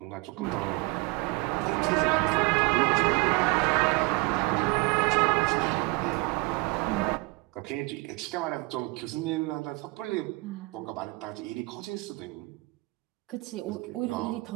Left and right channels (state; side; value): quieter; left; 24.0 dB